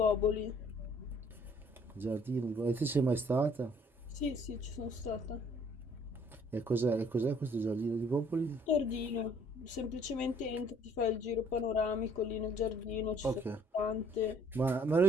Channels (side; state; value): both; normal; correlation 0.60